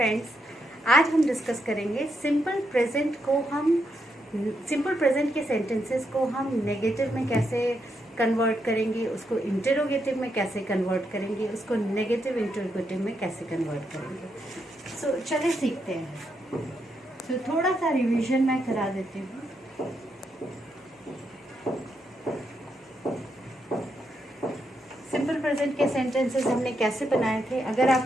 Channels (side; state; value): both; normal; correlation 0.81